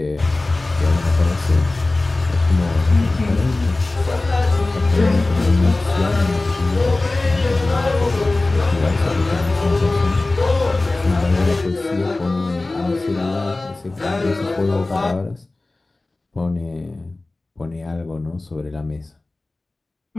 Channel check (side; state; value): right; quieter; 3.0 dB